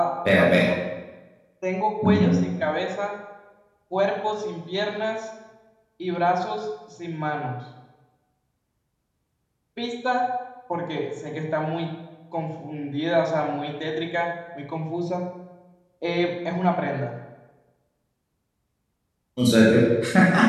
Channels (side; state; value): both; identical; correlation 1.00